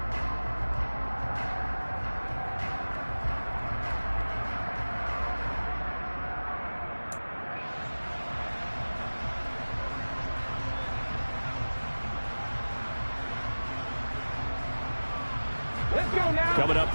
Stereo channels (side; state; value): both; inverted; correlation -1.00